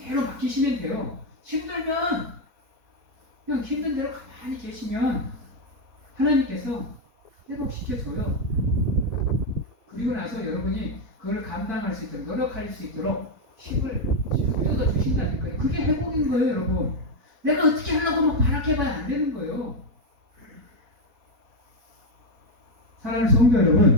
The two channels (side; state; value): left; late; 4.3 ms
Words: 맡기시면 돼요. 힘들면 그냥 힘든 대로 가만히 계시면 하나님께서 회복시켜줘요. 그리고 나서 여러분이 그걸 감당할 수 있도록 노력할 수 있도록 힘을 뜯어주신다니까요. 그게 회복인 거예요, 여러분. 내가 어떻게 하려고 막 바라해봐야 안 되는 거예요. 사랑하는 성도